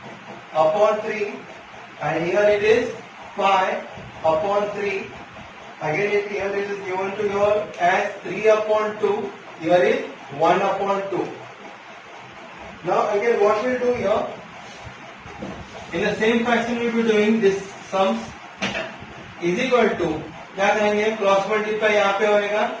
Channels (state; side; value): identical; both; correlation 1.00